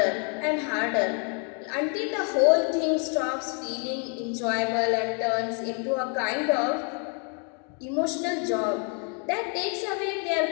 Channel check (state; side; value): quieter; right; 38.5 dB